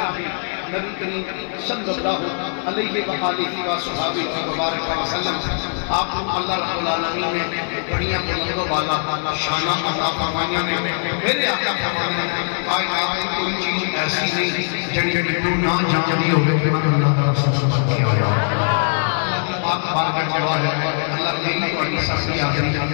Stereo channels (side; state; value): right; silent; digital silence